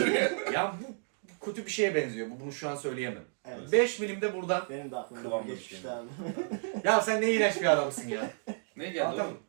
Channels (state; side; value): silent; left; digital silence